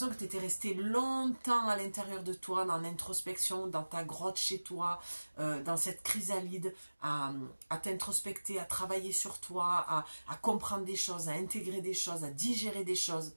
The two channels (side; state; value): both; inverted; correlation -1.00